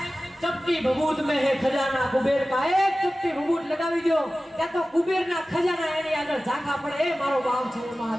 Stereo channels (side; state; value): both; normal; correlation 0.96